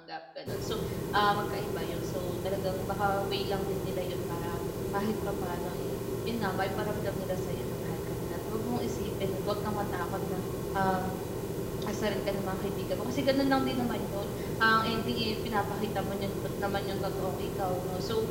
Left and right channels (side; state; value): both; identical; correlation 1.00